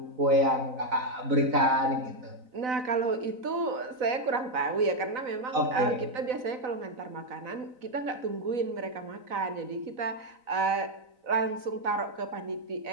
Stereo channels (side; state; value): left; late; 4.0 ms